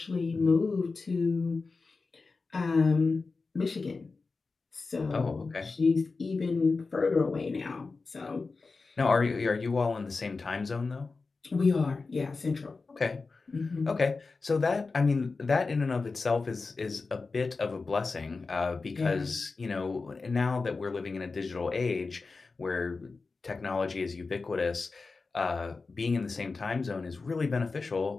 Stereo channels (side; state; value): right; quieter; 4.1 dB